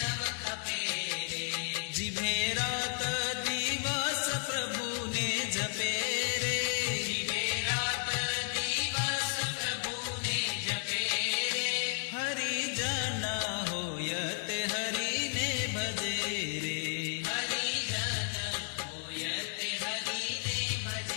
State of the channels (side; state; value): right; silent; 56 dB below the other